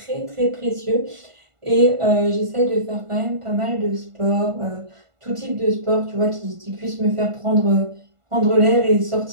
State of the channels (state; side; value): late; left; 1.5 ms